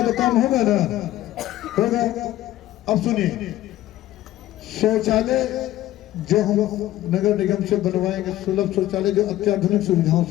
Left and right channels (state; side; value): quieter; right; 14.6 dB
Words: तो काम होगा ना, होगा। अब सुनिए, शौचालय जो हम नगर निगम से बनवाएंगे, सुलभ शौचालय जो अत्याधुनिक सुविधाओं